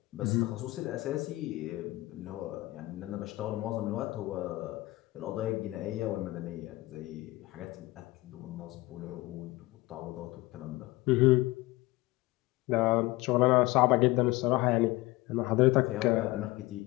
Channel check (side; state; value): right; quieter; 20.2 dB